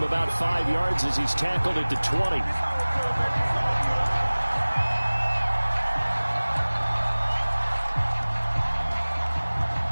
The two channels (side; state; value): both; inverted; correlation -1.00